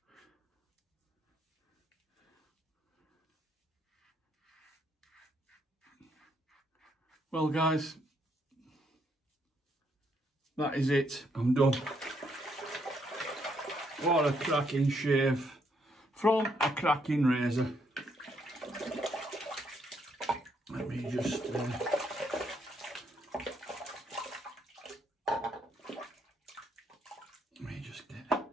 Well, guys, that is it. I'm done. What a cracking shave from a cracking razor. Let me just get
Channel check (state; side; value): normal; both; correlation 0.74